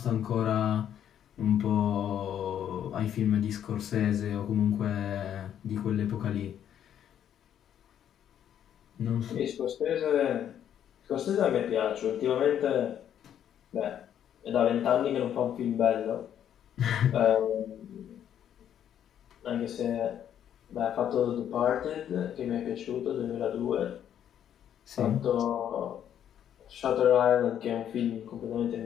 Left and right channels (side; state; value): right; quieter; 9.8 dB